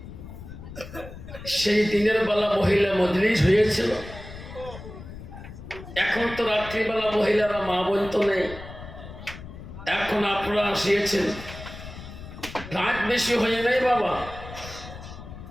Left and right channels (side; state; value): left; noise; rumble, 13 dB below the sound